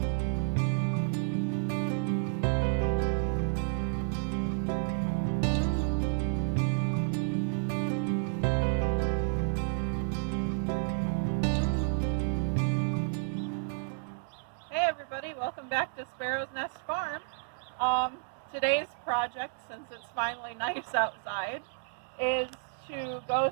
Hey everybody, welcome back to Sparrow's Nest Farm. Today's project, since it's finally nice outside, is to go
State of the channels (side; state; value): left; silent; digital silence